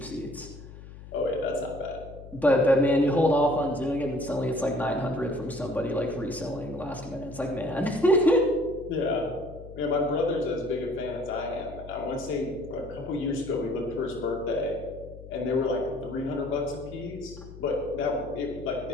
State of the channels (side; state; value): left; noise; hum, 15 dB below the sound